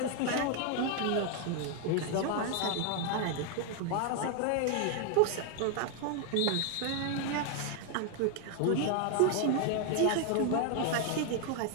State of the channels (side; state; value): both; different; correlation 0.00